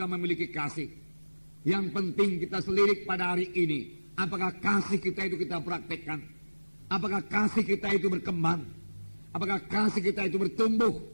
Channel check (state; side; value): inverted; both; correlation -1.00